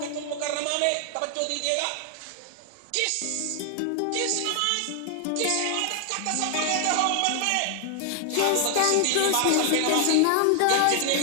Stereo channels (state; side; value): different; both; correlation 0.00